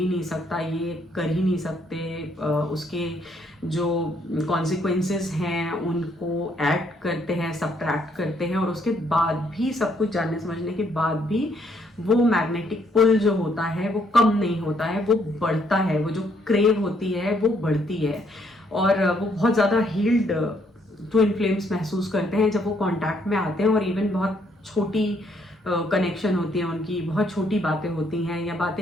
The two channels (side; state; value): both; normal; correlation 0.70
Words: नहीं सकता, ये कर ही नहीं सकते, उसके जो कॉन्सिक्वेंसेस हैं उनको ऐड करते हैं, सब्ट्रैक्ट करते हैं और उसके बाद भी सब कुछ जानने समझने के बाद भी वो मैग्नेटिक पुल जो होता है वो कम नहीं होता है, वो बढ़ता है, वो जो क्रेव होती है वो बढ़ती है और वो बहुत ज़्यादा हील्ड ट्विन फ्लेम्स महसूस करते हैं जब वो कांटेक्ट में आते हैं। और इवन बहुत छोटी कनेक्शन होती है उनकी, बहुत छोटी बातें होती हैं या